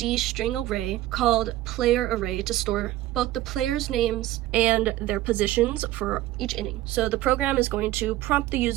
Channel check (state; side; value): quieter; left; 15.2 dB